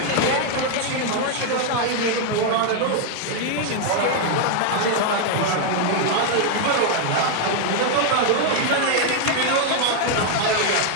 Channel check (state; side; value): different; both; correlation 0.00